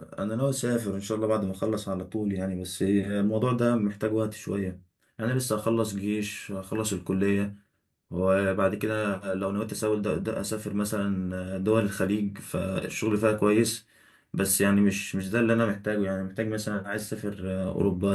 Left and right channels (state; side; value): identical; both; correlation 1.00